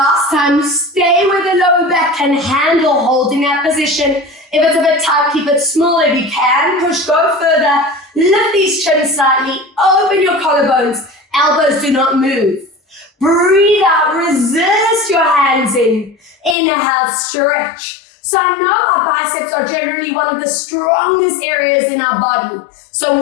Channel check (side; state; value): right; drops out; at 16.6 s